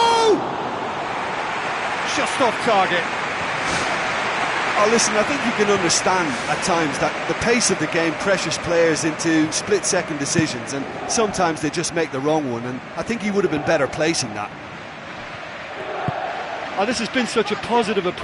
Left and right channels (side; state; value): both; identical; correlation 1.00